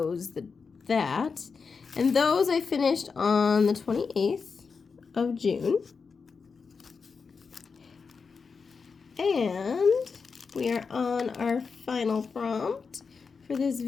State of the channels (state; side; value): quieter; right; 5.2 dB